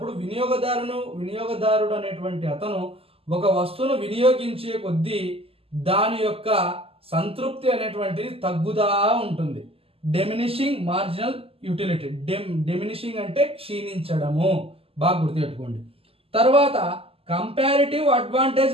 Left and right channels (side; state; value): left; late; 0.28 ms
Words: వినియోగదారుడు అనేటువంటి అతను ఒక వస్తువును వినియోగించే కొద్దీ దాని యొక్క సంతృప్తి అనేటువంటిది తగ్గుదా ఉంటుంది. Diminishing marginal utility. డిమినిషింగ్ అంటే క్షీణించడము. బాగా గుర్తుపెట్టుకోండి. తర్వాత కంపారిటివ్ అడ్వాంటేజ్